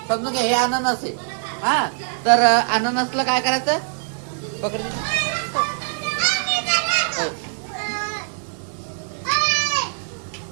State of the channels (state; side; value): silent; left; 64 dB below the other